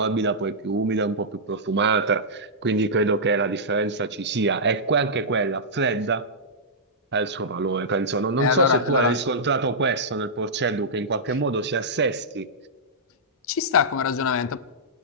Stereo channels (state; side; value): normal; both; correlation -0.12